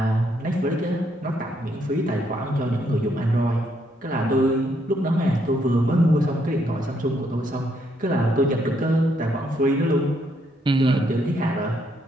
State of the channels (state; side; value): normal; both; correlation 0.73